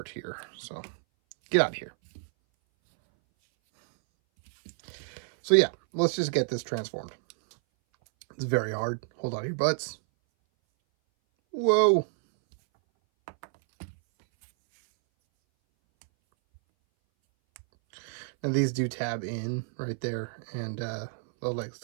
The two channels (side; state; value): left; silent; 59 dB below the other